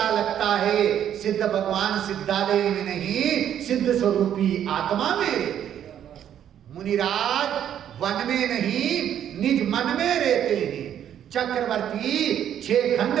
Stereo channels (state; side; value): quieter; left; 10.0 dB